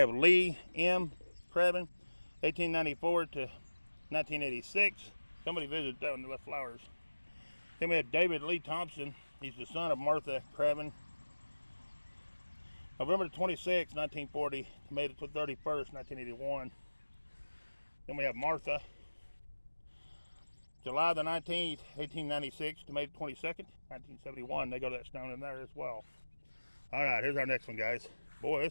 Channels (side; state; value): both; inverted; correlation -1.00